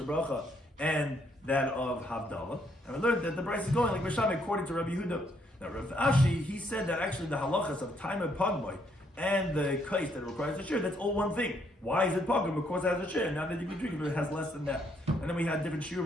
bracha, and that of Havdalah. And we learned that the price is going like Misham according to Rabbi Yehuda. Now Rav Ashi, he said that actually the halachas of time and pagmai and the kais that requires a shiur, that's all one thing. Why is it pagum? Because it has a shiur. Now that you can drink it, but it has less than that. And then we had different shiur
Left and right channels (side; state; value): both; normal; correlation 0.71